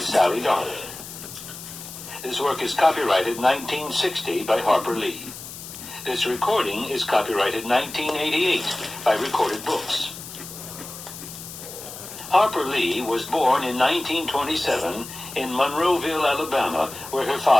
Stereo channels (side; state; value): left; noise; hiss, 12 dB below the sound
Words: Darling. This work is copyrighted 1960 by Harper Lee. This recording is copyrighted 1988 by Recorded Books. Harper Lee was born in 1927 in Monroeville, Alabama, where her